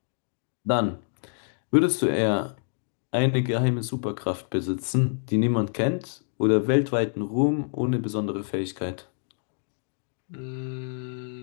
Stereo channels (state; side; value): silent; right; digital silence